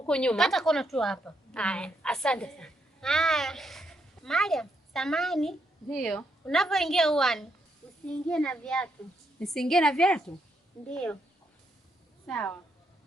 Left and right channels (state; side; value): normal; both; correlation 0.78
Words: nyuma. Kata kona tu hapa. Haya, asante sana. Haya. Mariam, samani. Ndio. Unapoingia uani, usiingie na viatu. Nisiingie na viatu? Ndio. Sawa.